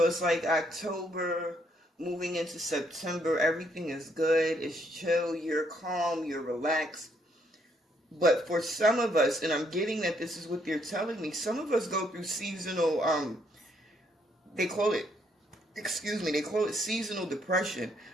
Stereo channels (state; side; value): normal; both; correlation 0.71